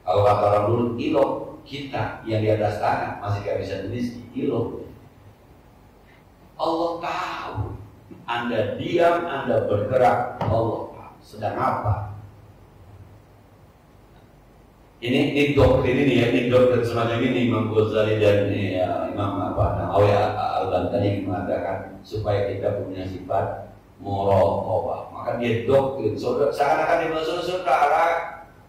Kalau kata orang dulu, kilo kita yang di atas tanah masih gak bisa meneliti, kilo. Allah tahu. Anda diam, Anda bergerak, Allah tahu sedang apa. Ini doktrin ini ya, ini doktrin semacam ini Imam Ghazali dan Imam Nawawi Al-Bantani mengatakan supaya kita punya sifat muraqabah. Maka dia doktrin, seakan-akan dia saudara,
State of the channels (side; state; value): both; identical; correlation 1.00